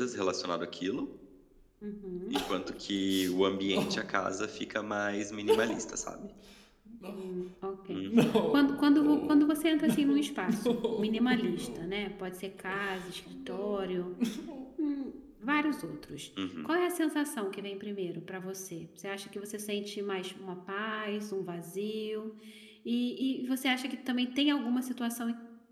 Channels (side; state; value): both; identical; correlation 1.00